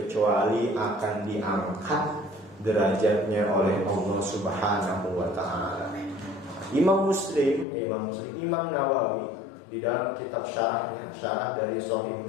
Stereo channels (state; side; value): drops out; right; at 7.7 s